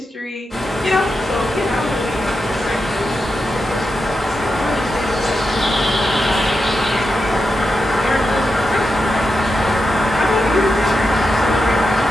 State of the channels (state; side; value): normal; both; correlation 0.88